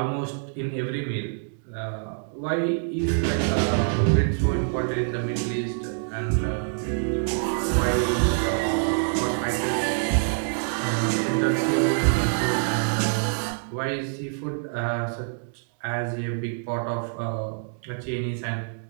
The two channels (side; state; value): left; silent; digital silence